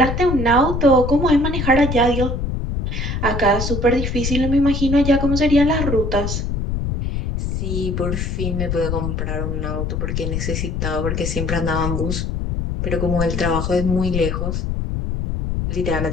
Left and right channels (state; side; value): noise; left; rumble, 2 dB below the sound